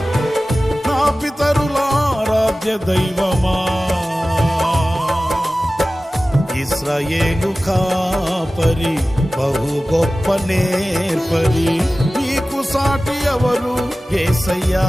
నా పితరుల ఆరాధ్య దైవమా. ఇశ్రాయేలు కాపరి, బహు గొప్ప నేర్పరి, నీకు సాటి ఎవరు యేసయ్యా.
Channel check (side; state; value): both; normal; correlation 0.96